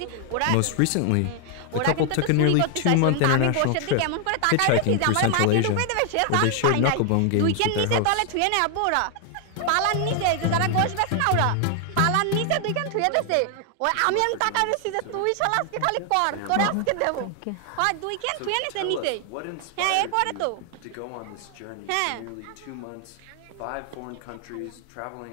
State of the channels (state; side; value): different; both; correlation 0.00